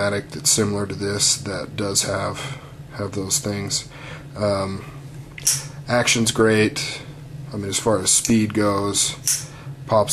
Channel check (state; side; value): identical; both; correlation 1.00